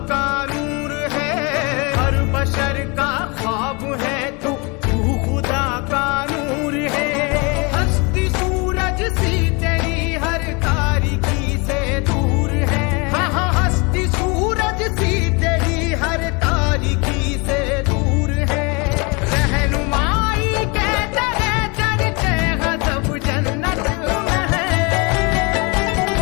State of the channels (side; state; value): right; quieter; 29.5 dB